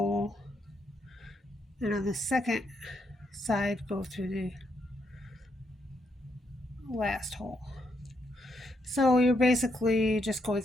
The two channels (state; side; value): normal; both; correlation 0.78